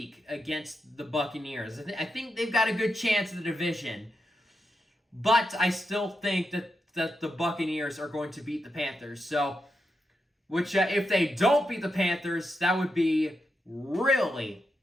against the Buccaneers. I think they've got a good chance in the division, but I still think that the Buccaneers are going to beat the Panthers. So, which if they don't beat the Panthers, that would be really,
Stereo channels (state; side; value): normal; both; correlation 0.86